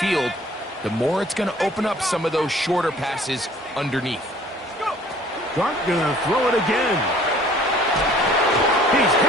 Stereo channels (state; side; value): normal; both; correlation 0.54